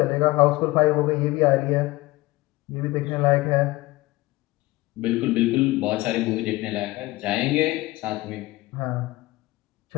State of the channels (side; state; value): right; quieter; 20.0 dB